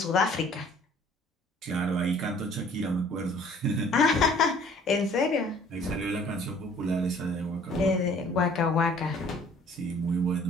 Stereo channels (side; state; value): both; normal; correlation 0.54